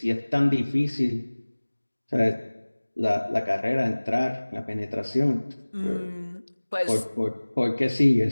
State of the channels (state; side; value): inverted; both; correlation -1.00